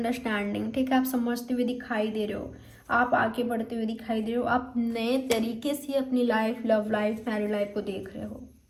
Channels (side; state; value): both; identical; correlation 1.00